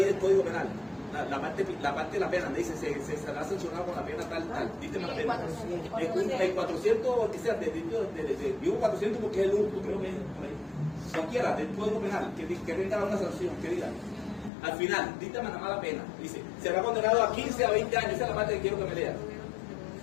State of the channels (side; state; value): right; drops out; at 14.5 s